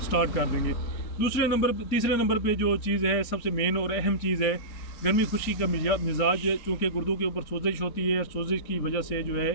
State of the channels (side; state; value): right; late; 3.8 ms